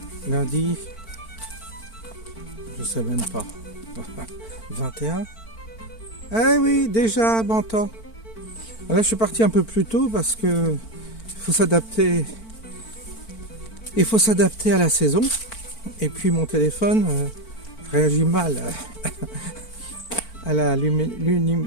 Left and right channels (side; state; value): right; late; 4.5 ms